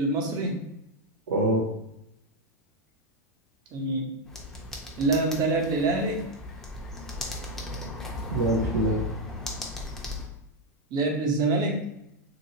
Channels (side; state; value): both; normal; correlation 0.03